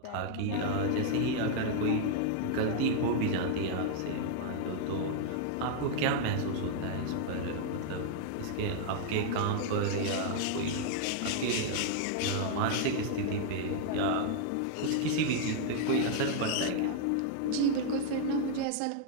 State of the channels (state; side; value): different; both; correlation 0.00